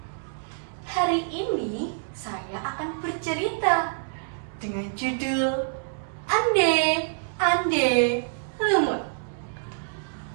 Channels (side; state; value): left; silent; digital silence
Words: Hari ini saya akan bercerita dengan judul Ande Lumut.